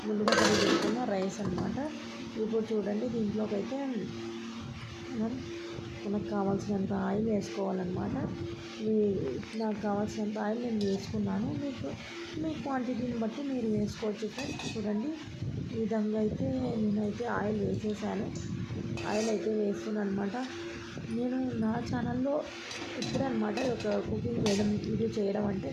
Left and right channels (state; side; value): identical; both; correlation 1.00